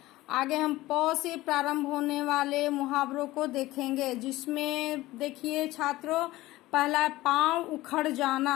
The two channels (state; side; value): quieter; right; 17.8 dB